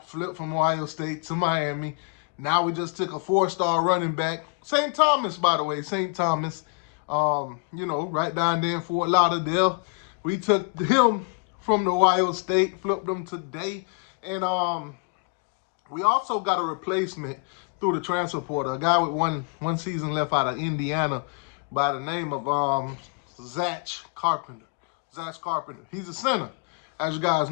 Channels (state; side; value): quieter; right; 35.8 dB